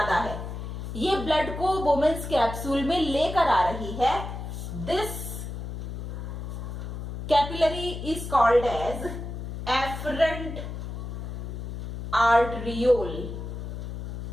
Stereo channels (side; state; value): left; noise; hum, 7 dB below the sound